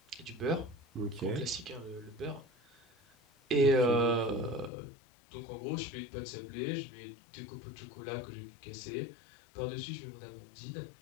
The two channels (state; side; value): drops out; right; at 4.7 s